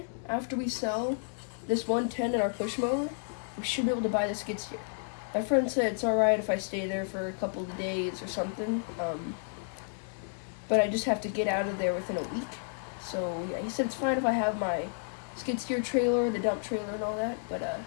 after we sell this 110 and our push mower, we should be able to buy the skid steer. My friend said it's alright if I stay there for a couple of days or something, but I just have to get out of there within a week. So yeah, he said it's fine if I have my skid steer trailer, the dump trailer and all that, but let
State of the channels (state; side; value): silent; right; digital silence